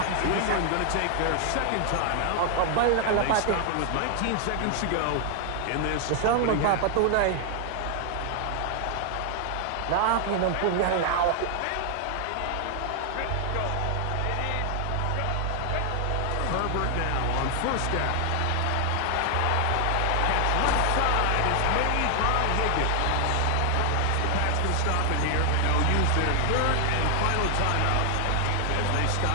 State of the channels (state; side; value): different; both; correlation 0.00